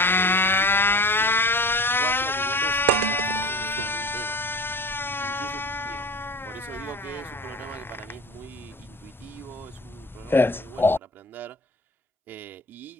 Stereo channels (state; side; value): normal; both; correlation 0.38